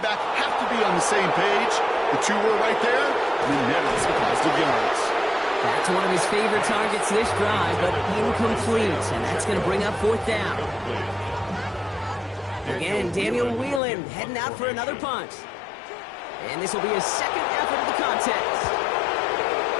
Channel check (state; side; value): drops out; right; at 13.8 s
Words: have to be on the same page. The two were right there, and then netted some positive yards. That's one of his favorite targets this drive, but incomplete, and that's going to bring up 4th down. Again, Daniel Whelan heading out for another punt. And this will be his 2nd effort of the contest.